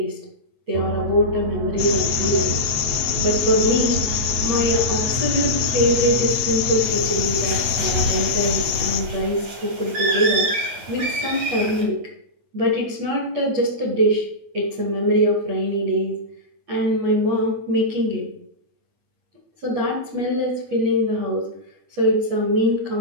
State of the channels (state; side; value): late; left; 9.1 ms